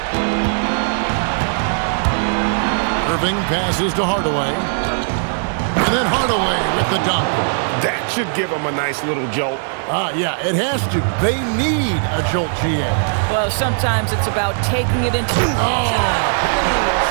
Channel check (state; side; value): silent; left; digital silence